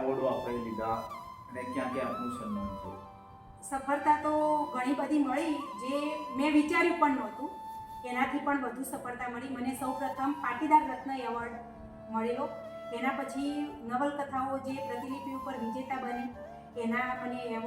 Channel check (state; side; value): identical; both; correlation 1.00